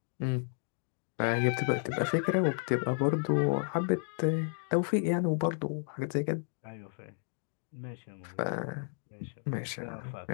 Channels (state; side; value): silent; right; digital silence